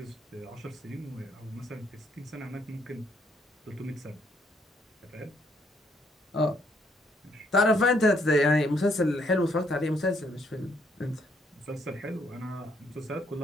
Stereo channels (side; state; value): both; normal; correlation 0.70